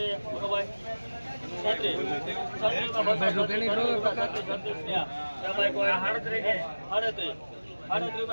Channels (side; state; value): both; inverted; correlation -1.00